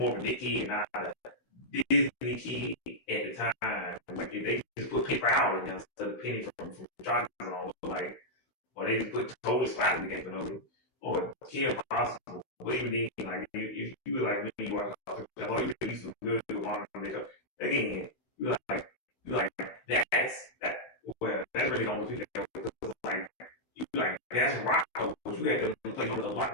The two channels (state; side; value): late; right; 16 ms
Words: of a Nicky and not a Disney kid at the time. Like, if they just put paper out in there instead of Penny from Chops on, like, or they just put Total Spider in the game, or Kim Possible. But even then, like, if you were like me, you watch you at least was good with modern makeup. Again, you like that. Well, that's really the only people that like you like that's Rocco, but you had to play on the